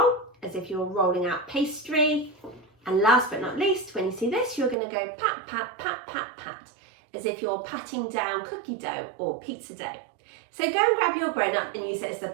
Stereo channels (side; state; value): left; drops out; at 4.8 s